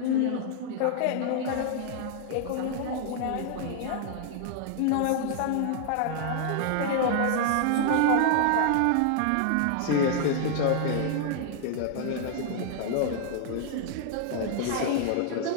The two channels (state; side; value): different; both; correlation -0.01